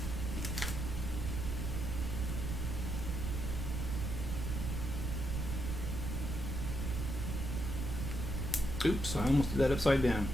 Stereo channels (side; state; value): right; noise; rumble, 2 dB below the sound